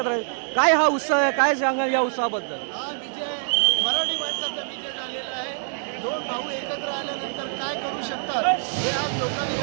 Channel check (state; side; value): silent; left; digital silence